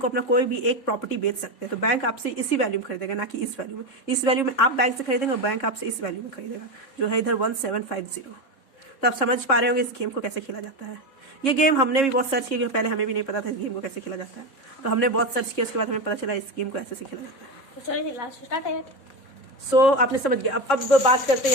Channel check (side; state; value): right; late; 3.6 ms